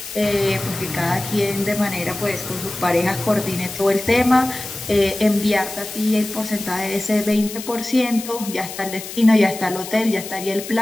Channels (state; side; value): noise; left; hiss, 11 dB below the sound